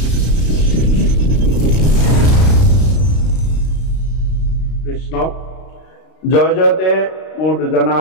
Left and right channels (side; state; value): right; late; 32 ms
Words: জয় জয়তে মোৰ দুজনা